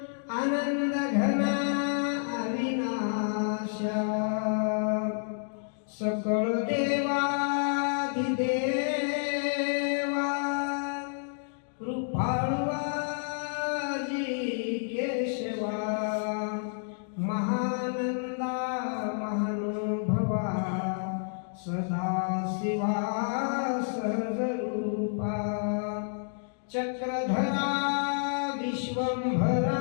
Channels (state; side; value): silent; right; digital silence